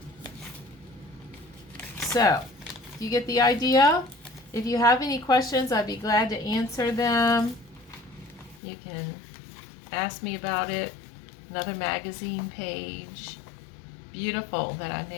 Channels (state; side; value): drops out; right; at 8.6 s